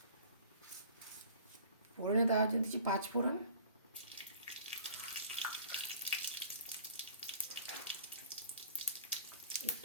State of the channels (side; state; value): both; inverted; correlation -0.47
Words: ফোড়নে দেওয়ার জন্য দিচ্ছি 5 ফোড়ন,